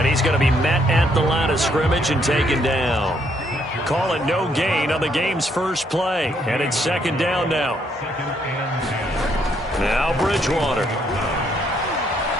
he's going to be met at the line of scrimmage and taken down. Call it no gain on the game's first play. And it's second down now. Now Bridgewater.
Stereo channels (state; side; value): normal; both; correlation 0.71